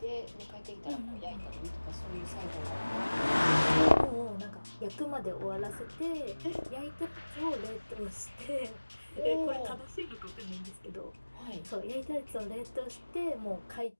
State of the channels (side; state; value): both; inverted; correlation -1.00